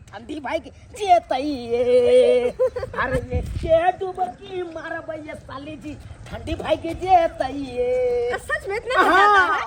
ठंडी भाई के जे तइए। अरे ये के डुबकी मारा भाई साली जी ठंडी भाई के जे तइए। सच में इतना मजा आता है।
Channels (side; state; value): both; identical; correlation 1.00